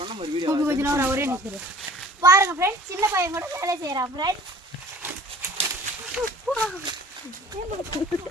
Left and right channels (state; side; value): normal; both; correlation 0.48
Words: ஒரே நிற்கிறேன் பாருங்க ஃப்ரெண்ட்ஸ். சின்ன பையன் கூட வேலை செய்யறான் ஃப்ரெண்ட்ஸ்.